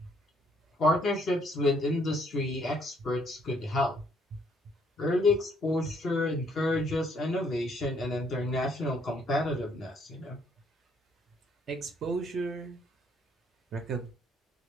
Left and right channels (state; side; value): normal; both; correlation 0.67